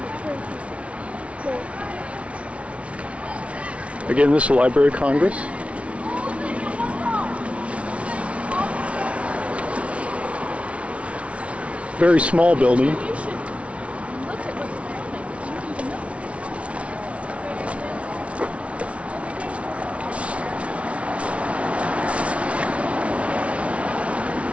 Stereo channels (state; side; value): late; left; 0.062 ms